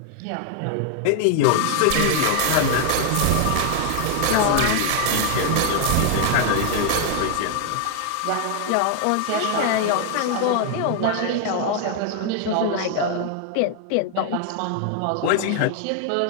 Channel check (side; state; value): both; different; correlation 0.00